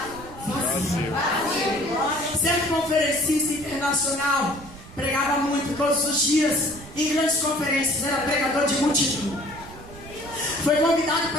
vazio. Certo conferencista internacional pregava muito todos os dias em grandes conferências, era pregador de multidão. Foi convidado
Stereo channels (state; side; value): noise; right; rumble, 17 dB below the sound